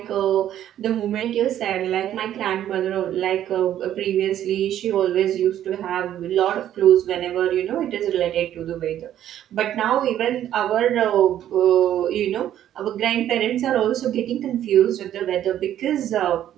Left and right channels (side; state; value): left; quieter; 11.4 dB